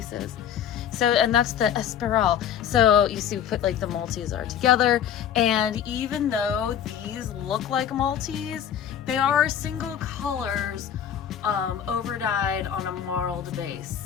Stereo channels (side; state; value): right; quieter; 9.2 dB